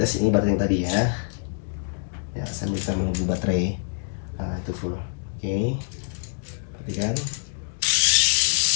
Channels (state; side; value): silent; right; digital silence